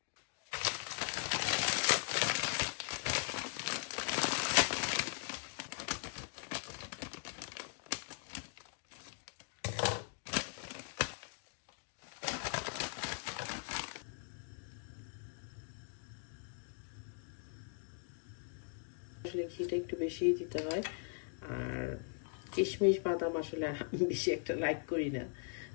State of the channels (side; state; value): right; silent; 51 dB below the other